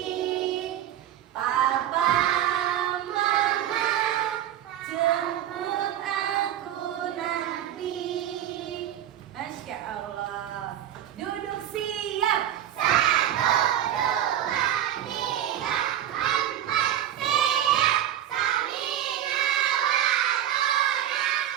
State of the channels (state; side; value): quieter; left; 11.3 dB